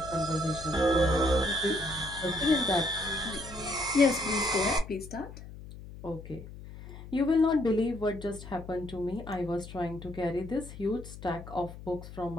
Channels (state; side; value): noise; left; hum, 14 dB below the sound